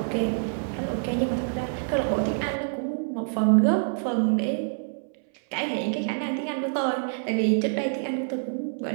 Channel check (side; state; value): left; silent; 61 dB below the other